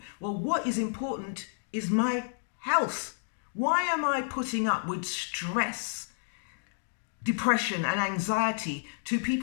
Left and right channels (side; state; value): right; silent; digital silence